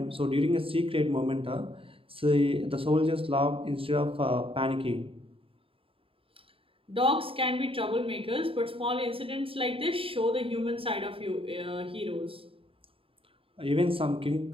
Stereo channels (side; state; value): left; late; 0.27 ms